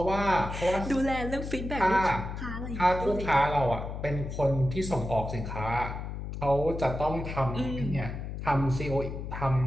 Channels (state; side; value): noise; left; hum, 6 dB below the sound